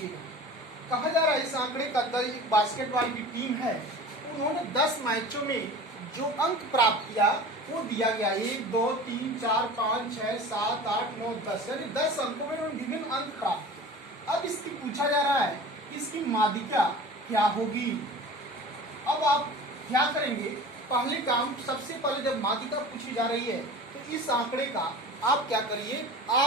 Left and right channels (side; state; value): both; normal; correlation 0.38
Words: गए। कहा जा रहा है इस आंकड़े का एक बास्केटबॉल की टीम है, उन्होंने 10 मैचों में जो अंक प्राप्त किया वो दिया गया 1, 2, 3, 4, 5, 6, 7, 8, 9, 10, यानी 10 अंकों में उन्होंने विभिन्न अंक प्राप्त किए। अब इसकी पूछा जा रहा है इसकी माध्यिका क्या होगी। अब आप क्या करेंगे, पहले काम सबसे पहले जब माध्यिका पूछी जा रही है तो इस आंकड़े का आप क्या करिए,